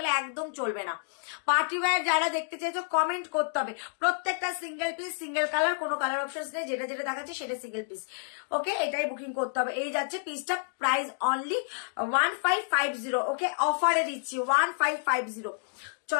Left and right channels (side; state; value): right; silent; digital silence